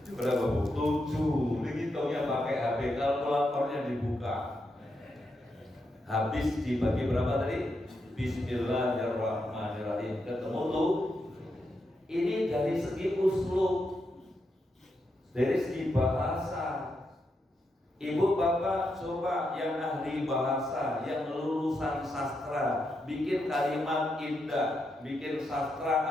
Berapa Bu? 7. Dihitungnya pakai HP, kalkulatornya dibuka. Habis dibagi berapa tadi? Bismillahirrahmanirrahim. Ketemu tuh. Ini dari segi uslub, dari segi bahasa. Ibu bapak coba yang ahli bahasa, yang lulusan sastra, bikin kalimat indah, bikin sastra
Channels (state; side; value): normal; both; correlation 0.83